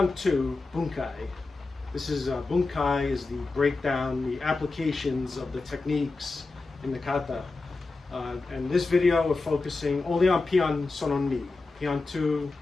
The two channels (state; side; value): quieter; right; 3.6 dB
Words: 2 bunkai. This is bunkai is the breakdown, the applications of the techniques in the kata. And this video we're focusing only on pinan sono ni, pinan 2